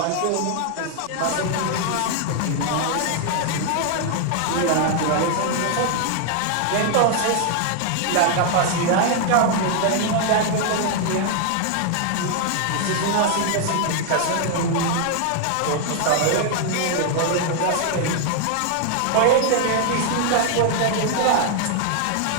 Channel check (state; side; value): different; both; correlation 0.00